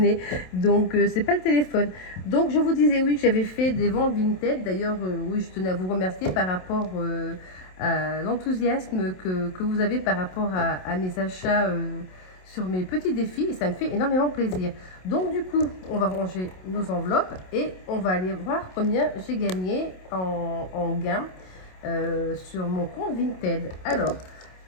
donc c'est pas le téléphone. Donc je vous disais oui que j'avais fait des ventes Vinted. D'ailleurs, oui, je tenais à vous remercier par rapport à l'enthousiasme que vous avez par rapport à mes achats sur mes petits défis, et ça me fait énormément plaisir. Donc du coup, on va ranger nos enveloppes et on va aller voir combien j'ai gagné en gain sur mon compte Vinted. Alors,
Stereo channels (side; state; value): right; late; 27 ms